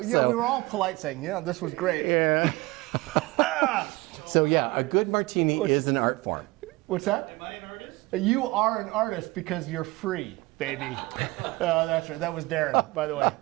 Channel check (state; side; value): quieter; left; 21.8 dB